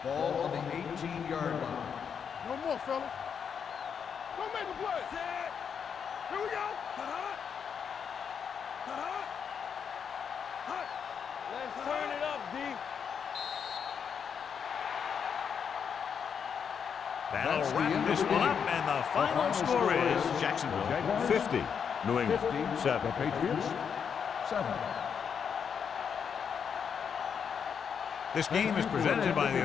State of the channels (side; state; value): right; quieter; 7.1 dB